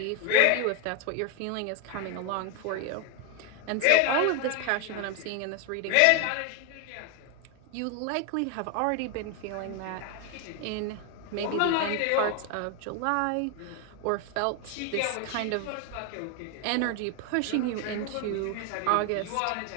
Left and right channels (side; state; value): both; different; correlation 0.01